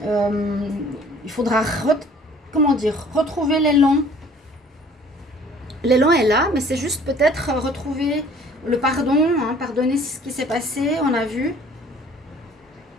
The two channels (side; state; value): both; normal; correlation 0.53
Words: Il faudra, retrouver l'élan. L'élan est là, mais c'est juste peut-être retrouver le pardon. Hein, pardonner ce qui s'est passé, on a vu.